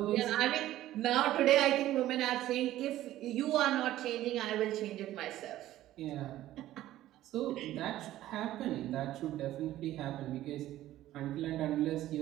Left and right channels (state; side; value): quieter; left; 14.2 dB